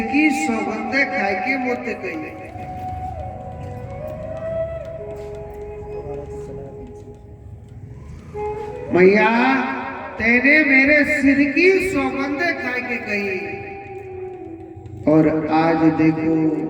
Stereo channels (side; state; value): both; identical; correlation 1.00